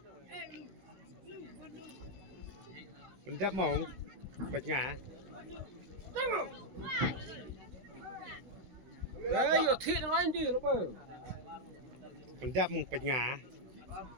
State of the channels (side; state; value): left; late; 16 ms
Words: Pendap mong bạch ngã. Đấy, giờ thịt nó anh đi nó bơ. Pendap mong bạch ngã.